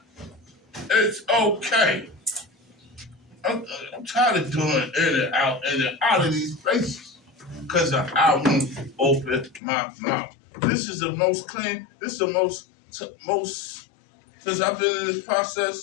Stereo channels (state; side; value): drops out; right; at 9.6 s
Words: It's okay. I'm tired of doing in and out of these places. Because I won't open my mouth. This is the most clean, this is the most, since I've been in this